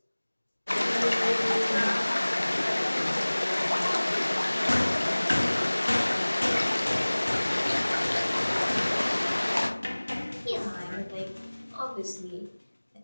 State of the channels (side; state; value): both; inverted; correlation -1.00